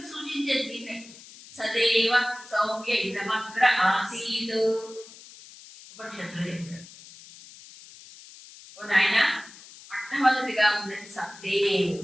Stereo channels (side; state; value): left; noise; hiss, 19 dB below the sound